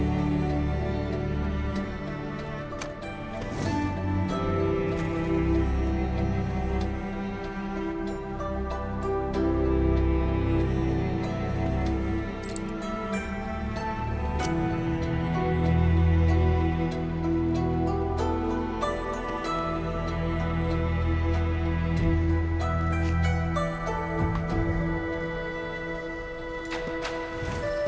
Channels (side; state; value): both; identical; correlation 1.00